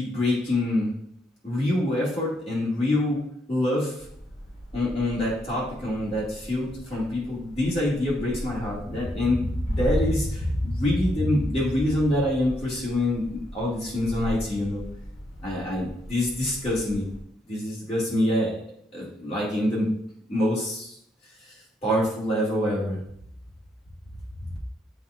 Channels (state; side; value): normal; both; correlation 0.76